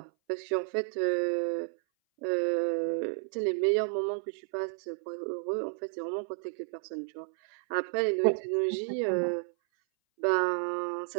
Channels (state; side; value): silent; left; 57 dB below the other